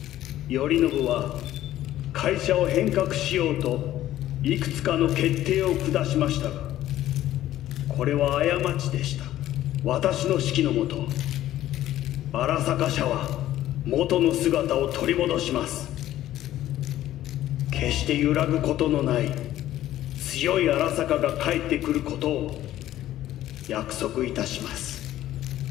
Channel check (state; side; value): quieter; right; 13.5 dB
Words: 頼信は会社を変革しようといくつかの決定を下しましたが、これは過ちでした。私の指揮のもと、荒坂社は元の姿を取り戻します。決して揺らぐことのない強い荒坂が帰ってくることを約束いたします。